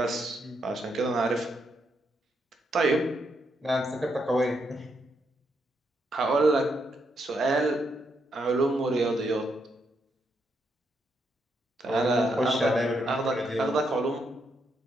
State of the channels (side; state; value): both; normal; correlation 0.79